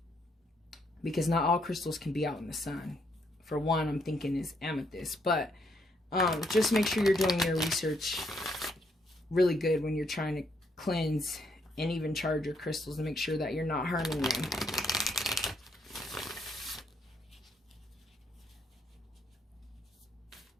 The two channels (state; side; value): normal; both; correlation 0.73